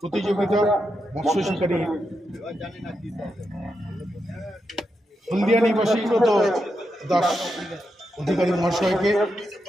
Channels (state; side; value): normal; both; correlation 0.85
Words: প্রতিযোগিতা মৎস্য শিকারী হলদিয়া নিবাসী সুব্রত দাস অধিকারী মহাশয়কে